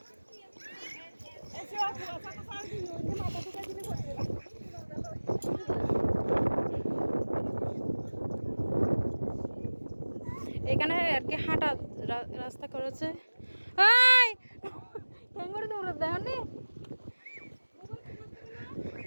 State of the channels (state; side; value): inverted; both; correlation -1.00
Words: এখানে আর কি হাঁটা রাস্তা করেছে।